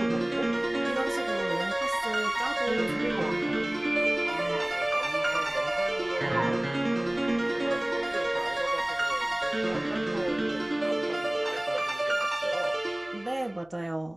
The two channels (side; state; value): left; noise; hum, 28 dB below the sound